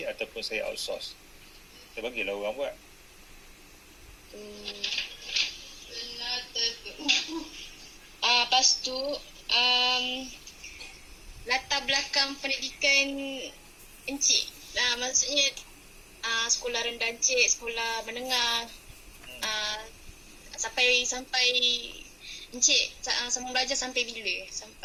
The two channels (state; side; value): identical; both; correlation 1.00